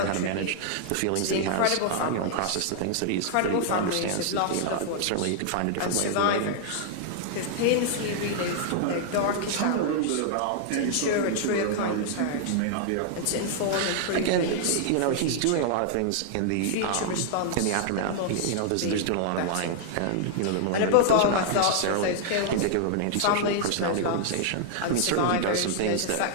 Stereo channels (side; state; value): both; different; correlation -0.01